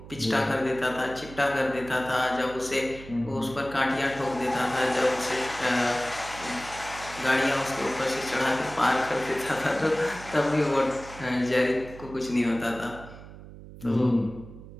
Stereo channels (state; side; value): noise; right; hum, 16 dB below the sound